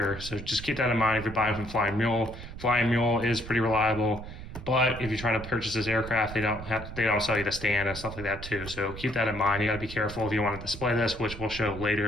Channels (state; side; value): noise; right; rumble, 11 dB below the sound